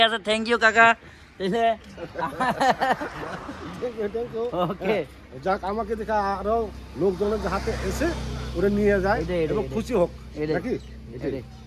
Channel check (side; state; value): both; identical; correlation 1.00